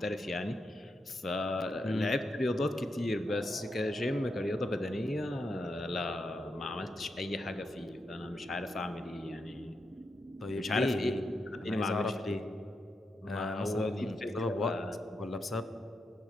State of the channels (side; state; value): both; normal; correlation 0.84